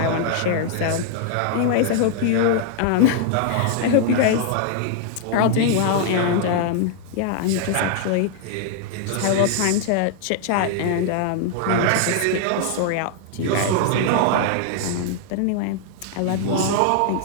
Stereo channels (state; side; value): different; both; correlation 0.00